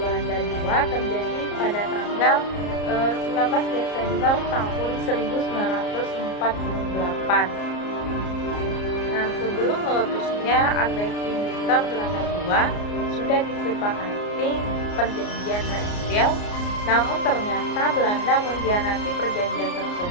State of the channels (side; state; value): right; late; 34 ms